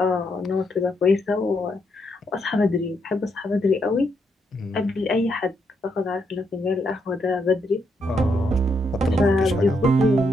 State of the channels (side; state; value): both; normal; correlation 0.78